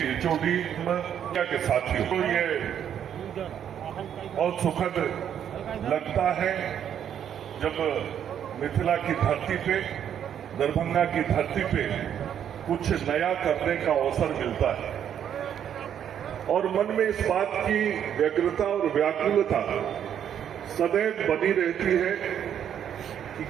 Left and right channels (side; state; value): left; quieter; 9.3 dB